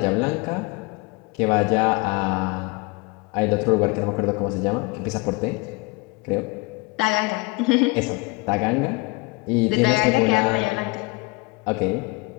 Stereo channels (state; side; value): quieter; right; 26.6 dB